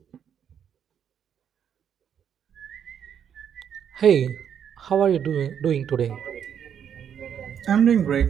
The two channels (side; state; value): left; quieter; 8.5 dB